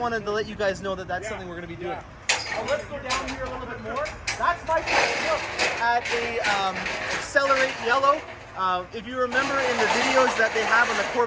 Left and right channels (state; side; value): identical; both; correlation 1.00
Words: to let you guys know that that's something we're going to be doing. Let's go down here a little bit more. That's my first look at a Accelerate Yellow. If you remember in the videos that they have on the